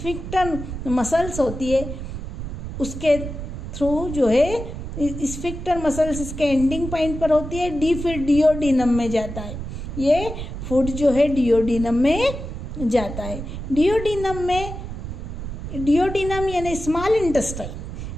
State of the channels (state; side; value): noise; right; rumble, 8 dB below the sound